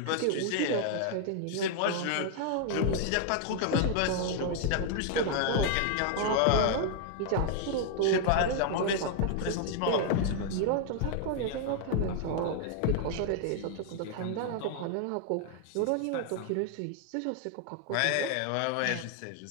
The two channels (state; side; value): different; both; correlation 0.00